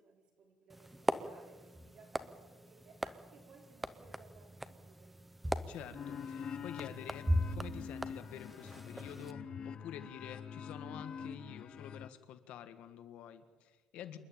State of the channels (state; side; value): normal; both; correlation 0.88